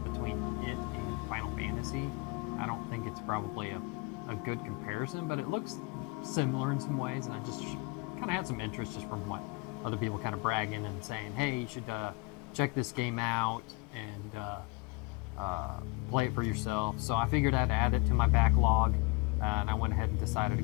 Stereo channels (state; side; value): quieter; right; 26.4 dB